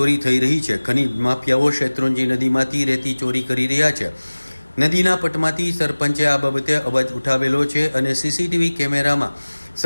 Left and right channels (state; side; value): inverted; both; correlation -1.00